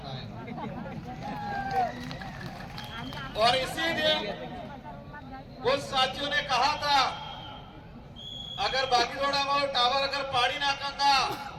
है। और इसीलिए कुछ साथियों ने कहा था अगर बागीदोरा वालों टावर अगर पाड़ी ना करना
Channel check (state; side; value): identical; both; correlation 1.00